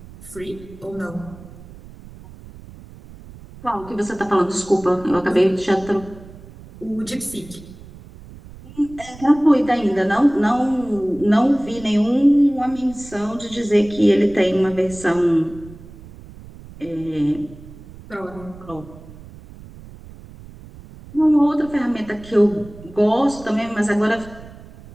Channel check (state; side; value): noise; right; rumble, 18 dB below the sound